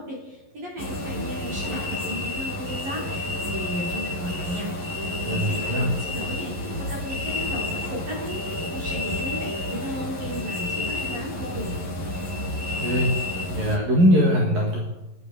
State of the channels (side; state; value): left; late; 11 ms